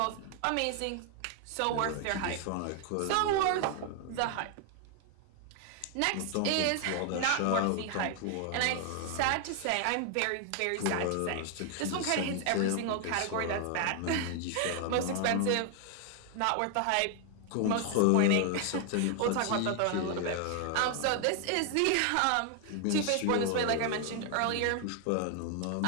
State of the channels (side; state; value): both; different; correlation 0.00